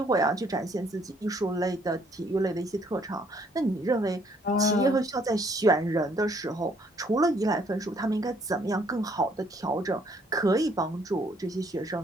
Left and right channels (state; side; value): normal; both; correlation 0.65